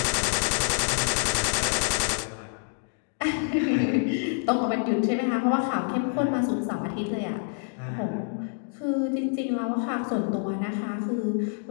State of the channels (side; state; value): right; silent; 60 dB below the other